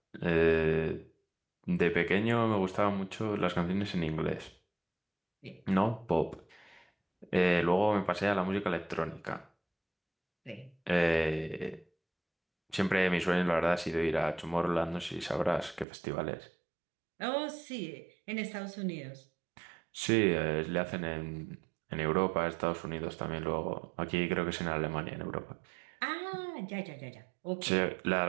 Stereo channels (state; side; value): drops out; left; at 15.9 s